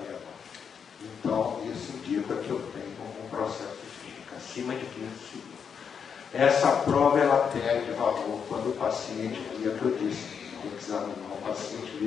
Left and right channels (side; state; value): right; quieter; 6.8 dB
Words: vena. Então, isso indica que eu tenho um processo isquêmico acima de 15 segundos. Essa prova ela perde valor quando o paciente, que eu disse, tem que examinar o paciente,